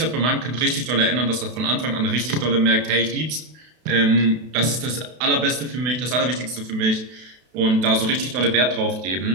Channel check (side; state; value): left; late; 32 ms